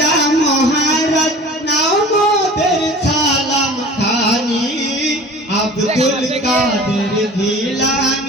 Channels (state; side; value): normal; both; correlation 0.42